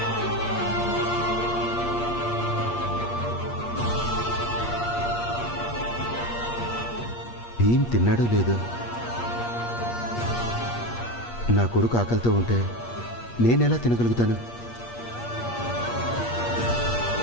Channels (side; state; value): right; late; 8.5 ms